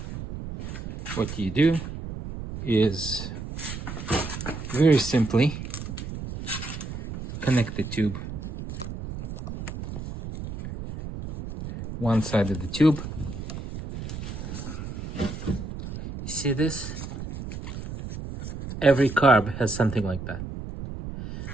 what you do is very simply connect the tube, one side of the tube. You see this? Every carb has something like that.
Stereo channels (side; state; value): right; noise; rumble, 8 dB below the sound